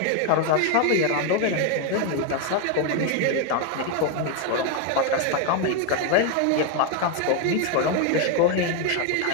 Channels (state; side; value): different; both; correlation 0.01